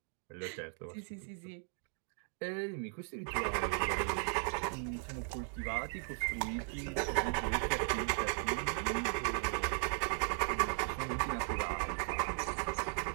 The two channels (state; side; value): silent; left; 53 dB below the other